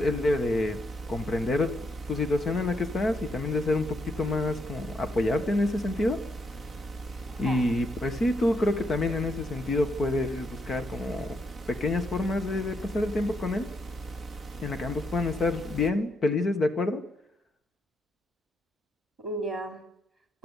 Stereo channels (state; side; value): normal; both; correlation 0.78